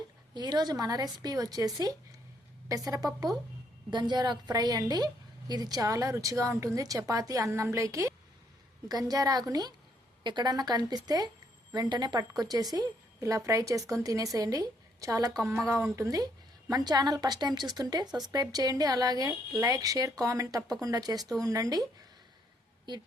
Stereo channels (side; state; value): both; normal; correlation 0.71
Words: ఈరోజు మన recipe వచ్చేసి పెసరపప్పు గంజారాకు ఫ్రై అండి. ఇది చాలా రుచిగా ఉంటుంది చపాతీ అన్నంలోకి. గంజారాకుని ఎక్కడన్నా కనిపిస్తే వెంటనే పట్టుకొచ్చేసి ఇలా ఫ్రై చేసుకొని తినేసేయండి. చాలా కమ్మగా ఉంటుంది. మన ఛానల్ ఫస్ట్ టైం చూస్తుంటే సబ్స్క్రైబ్ చేయండి. అలాగే లైక్ షేర్ కామెంట్ తప్పకుండా చేస్తూ ఉండండి. ఈ